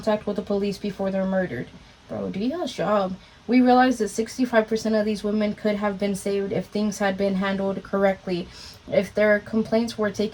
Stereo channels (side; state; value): both; identical; correlation 1.00